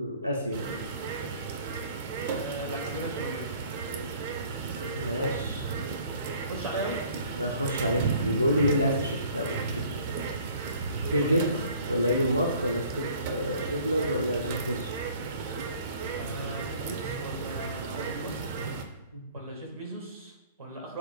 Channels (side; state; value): both; inverted; correlation -0.53